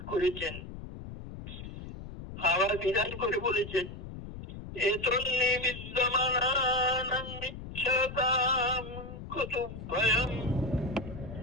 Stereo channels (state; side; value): noise; left; rumble, 11 dB below the sound